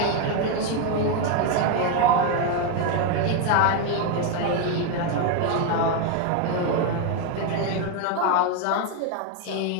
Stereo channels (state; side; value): different; both; correlation 0.01